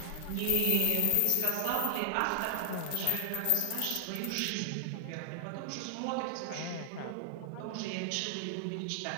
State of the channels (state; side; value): different; both; correlation 0.00